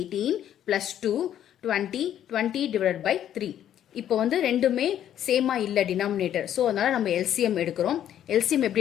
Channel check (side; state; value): right; quieter; 10.7 dB